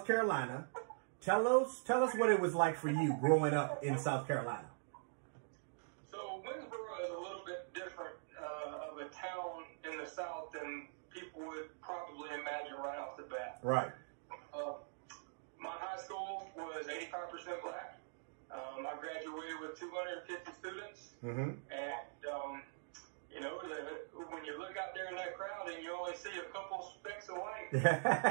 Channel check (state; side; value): silent; left; digital silence